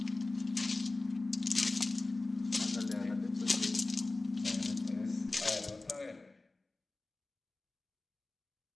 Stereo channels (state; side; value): quieter; right; 3.1 dB